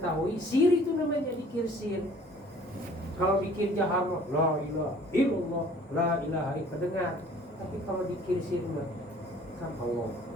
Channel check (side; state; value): both; normal; correlation 0.52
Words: sir itu namanya dikir sir. Kalau dikir jahar, la ilaha illallah, la ilaha illallah, dengar. Tapi kalau dikir sir kan Allah.